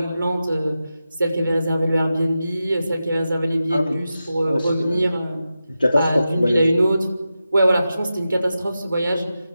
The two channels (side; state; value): both; inverted; correlation -0.91